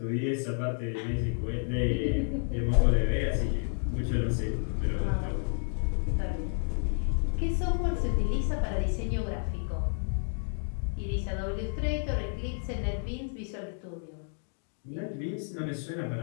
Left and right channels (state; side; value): silent; right; 57 dB below the other